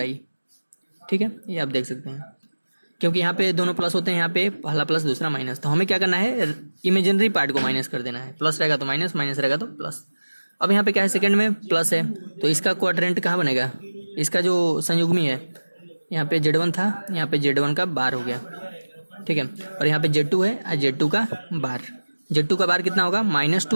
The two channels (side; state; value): both; inverted; correlation -1.00